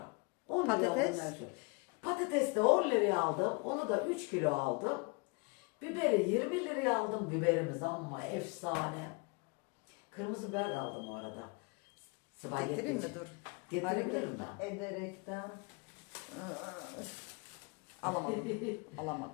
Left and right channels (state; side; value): quieter; right; 31.2 dB